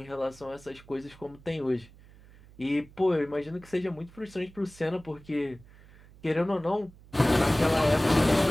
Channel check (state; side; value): noise; right; hum, 23 dB below the sound